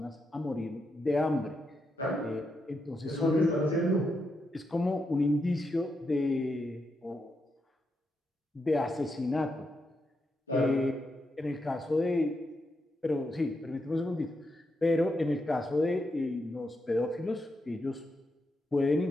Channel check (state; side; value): normal; both; correlation 0.83